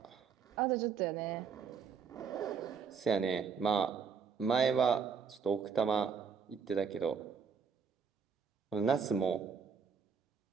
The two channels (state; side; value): quieter; left; 6.3 dB